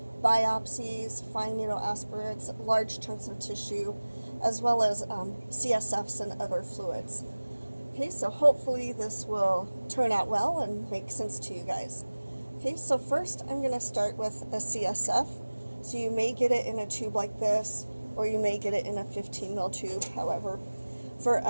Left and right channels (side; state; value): both; inverted; correlation -1.00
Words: fine needle aspirates, large chunks of tissue, as well as CSFs and other fluids. Okay, so hopefully this will turn out well and make sense to you guys. Okay, so first I'm going to start with a CSF. So you may get it in a tube like this, or you may get it in a 15 ml tube, however. For